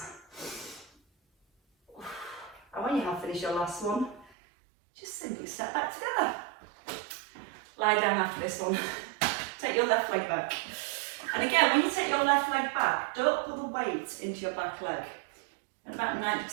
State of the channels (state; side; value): drops out; left; at 4.2 s